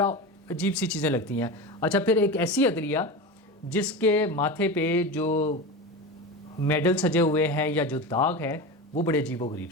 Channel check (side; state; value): both; normal; correlation 0.25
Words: عجیب سی چیزیں لگتی ہیں۔ اچھا، پھر ایک ایسی عدلیہ جس کے ماتھے پہ جو میڈل سجے ہوئے ہیں یا جو داغ ہے وہ بڑے عجیب و غریب